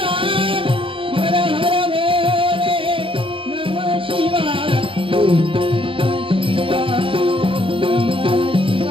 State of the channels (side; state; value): left; late; 0.25 ms